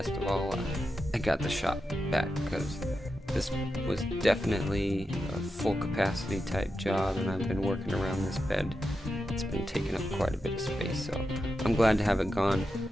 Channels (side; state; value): both; normal; correlation 0.89